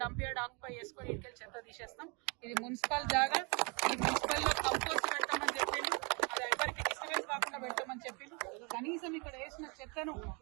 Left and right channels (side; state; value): left; quieter; 32.3 dB